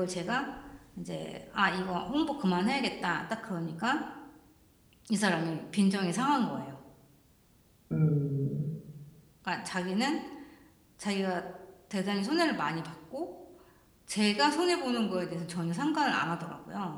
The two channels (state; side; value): identical; both; correlation 1.00